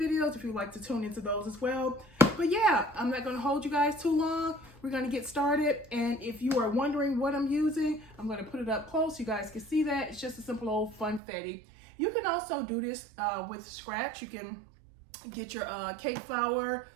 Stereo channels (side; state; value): left; drops out; at 11.2 s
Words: if you'd like to tune into those as well. But yeah, I'm not going to hold you guys too long. We're going to get started, and if you are wondering what I'm using, I'm going to put it up close so you guys can see that. It's just a simple old funfetti. You can also do this with scratch. You can get your cake flour,